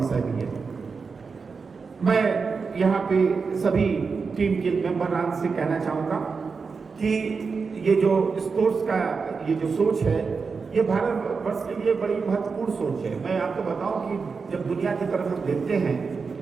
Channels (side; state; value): left; quieter; 5.0 dB